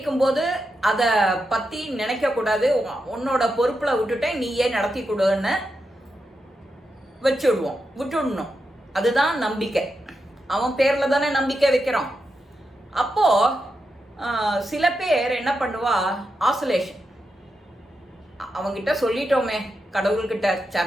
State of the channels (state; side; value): normal; both; correlation 0.87